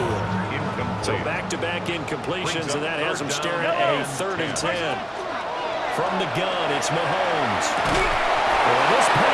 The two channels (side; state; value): both; identical; correlation 1.00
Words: So back-to-back incompletions, and that has them staring at a 3rd and 10. From the gun, it's Mahomes. This